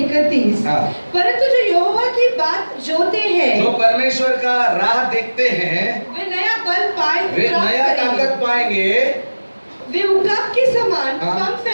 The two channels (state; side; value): inverted; both; correlation -1.00